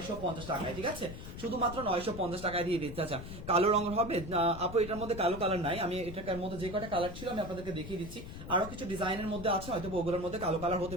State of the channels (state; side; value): noise; left; rumble, 10 dB below the sound